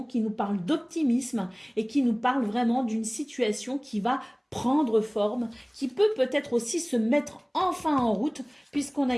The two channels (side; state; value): both; identical; correlation 1.00